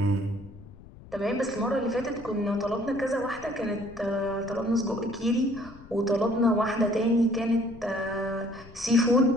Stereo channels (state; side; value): noise; left; rumble, 19 dB below the sound